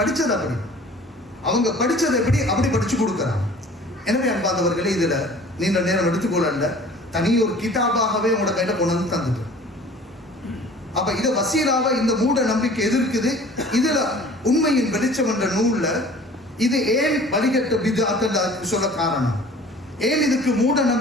படிச்சது எப்படி அப்படி படிச்சு கொடுக்கிறாங்க. எனவே அன்பாதவர்களே, இதுல நீண்ட நேரம் எடுத்துக்கொள்ள தனி ஒரு கிதாபாகவே உங்களோட கையில கொண்டு வந்து தந்துட்டு. அப்ப இத வசீலாவை இந்த மூட நம்பிக்கை எதிர்க்குது. இதுல உண்மையின் வெளிச்சம் என்ற நூல்ல இது ஏன் வழிகட்ட பித்அத் சொல்ல காரணம், ஏன் இதுக்கு மூட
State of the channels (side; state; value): both; normal; correlation 0.47